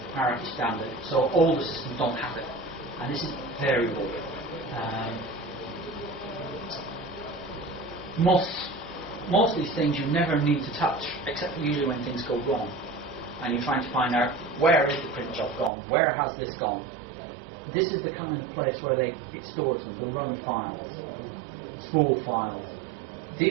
hierarchy standard, so older systems don't have it. And this is variable. Most of these things you never need to touch, except for usually when things go wrong. And you're trying to find out, where is the print job gone? Where has this gone? This is the kind of place where it stores them, the run files, spool files.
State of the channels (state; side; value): drops out; left; at 15.7 s